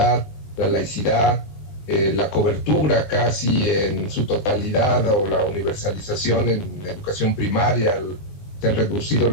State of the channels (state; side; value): late; right; 20 ms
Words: la laicidad, la cobertura casi en su totalidad o la universalización en educación primaria, se han reducido